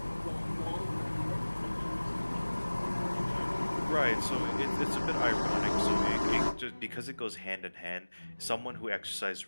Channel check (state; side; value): inverted; both; correlation -1.00